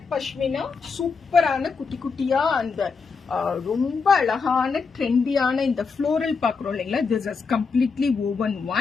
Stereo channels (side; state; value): right; quieter; 5.0 dB